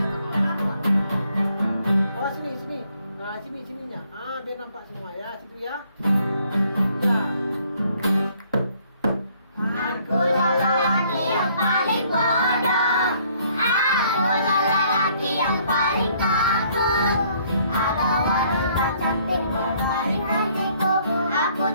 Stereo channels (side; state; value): both; inverted; correlation -0.64